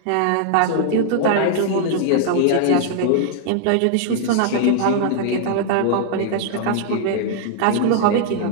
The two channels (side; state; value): both; different; correlation -0.01